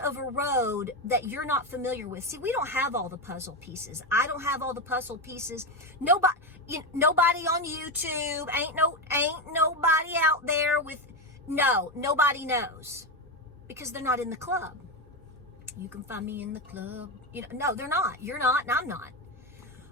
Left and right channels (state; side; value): normal; both; correlation 0.12